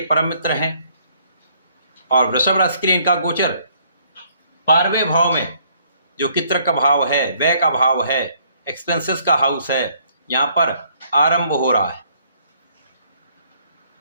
परम मित्र हैं और वृषभ राशि के लिए इनका गोचर 12वें भाव में, जो कि तर्क का भाव है, व्यय का भाव है, एक्सपेंसेस का हाउस है, यहाँ पर आरंभ हो रहा है।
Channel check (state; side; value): inverted; both; correlation -0.65